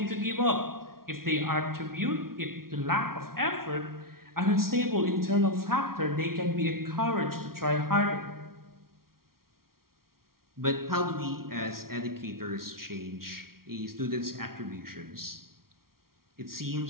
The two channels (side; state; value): left; late; 0.93 ms